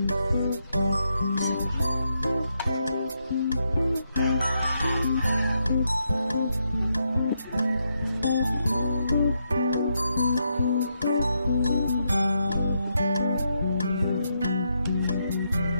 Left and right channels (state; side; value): inverted; both; correlation -0.81